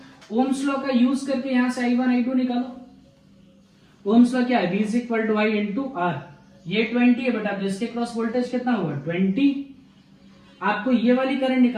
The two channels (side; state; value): both; identical; correlation 1.00